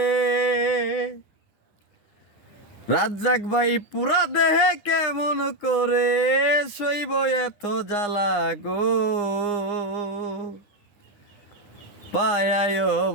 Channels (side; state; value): right; late; 9.6 ms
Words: রাজ্জাক ভাই পুরা দেহে কেমন করে সইব এত জ্বালা গো পায়ায়